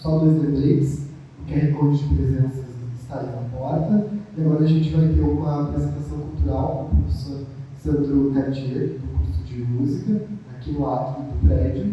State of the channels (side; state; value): both; identical; correlation 1.00